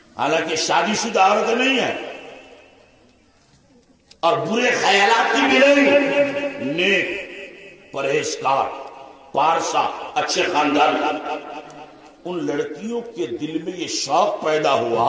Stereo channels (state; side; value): identical; both; correlation 1.00